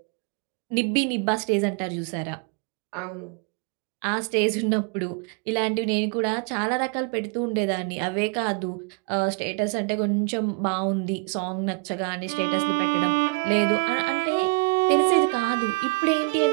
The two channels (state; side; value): quieter; left; 31.3 dB